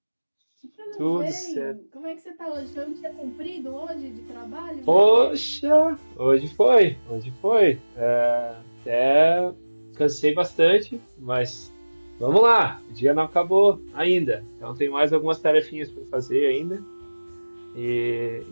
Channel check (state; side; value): inverted; both; correlation -1.00